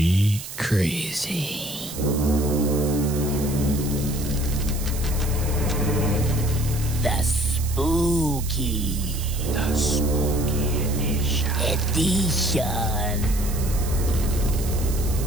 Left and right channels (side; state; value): right; noise; hiss, 11 dB below the sound